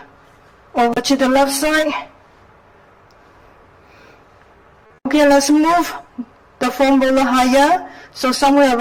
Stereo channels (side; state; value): both; identical; correlation 1.00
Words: over to the left side. Okay, let's move the foam roller higher. So somewhere